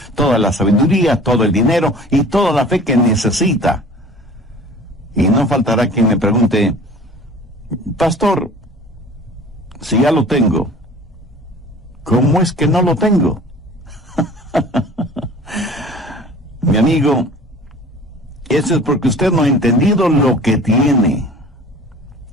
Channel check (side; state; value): both; normal; correlation 0.45